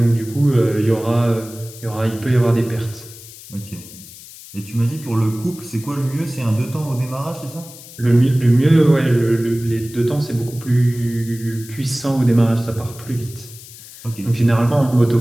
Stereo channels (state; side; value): noise; left; hiss, 17 dB below the sound